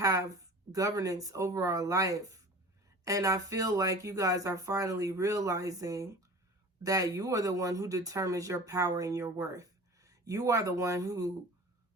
governance over our life. And I feel like you guys are finally realizing that you are the one who determines your power and your worth. You are the one who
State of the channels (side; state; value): both; normal; correlation 0.40